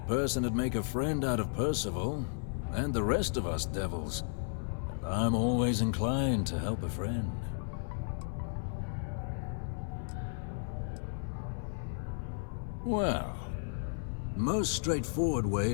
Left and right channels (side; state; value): right; silent; 55 dB below the other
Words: person would make a friend out of Percival, and the rest of us devils. And I'm always inclined to help a friend. Well, most straightforward